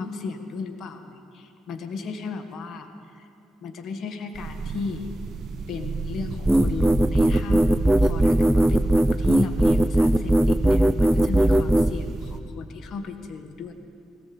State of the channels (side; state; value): both; normal; correlation 0.94